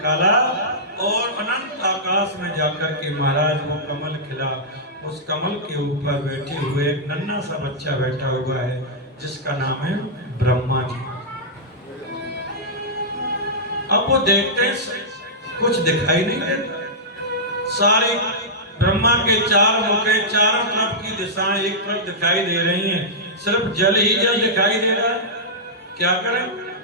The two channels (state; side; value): normal; both; correlation -0.12